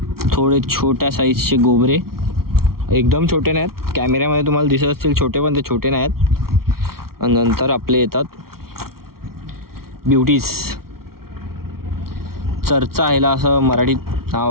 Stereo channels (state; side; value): late; left; 0.94 ms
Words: थोडे छोट्या साईजचे गोबरे, एकदम छोटे नाहीत. कॅमेऱ्यामध्ये तुम्हाला दिसत असतील छोटे, पण ते छोटे नाहीत. आणि नंतर आपले येतात ब्युटीज. चर्चा ह्याला असं मराठीत